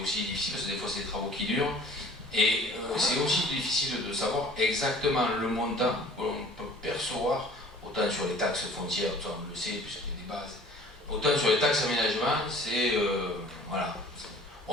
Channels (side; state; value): both; normal; correlation 0.49